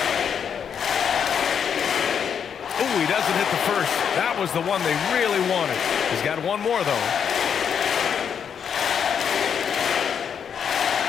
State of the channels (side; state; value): right; quieter; 7.6 dB